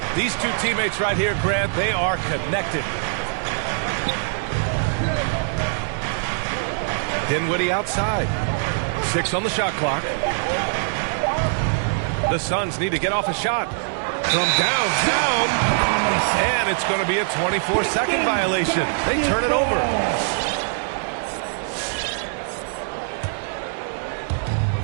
These two teammates right here, Grant, they are connected. Dinwiddie outside. 6 on the shot clock. The Suns need to get off a shot from downtown. And it's going to be a 24-second violation. They turn it over.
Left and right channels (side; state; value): left; silent; digital silence